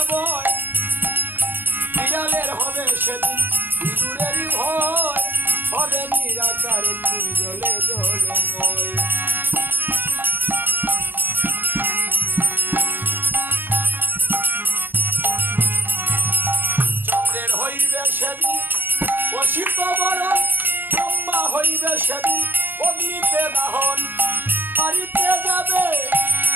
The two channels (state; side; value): late; left; 0.094 ms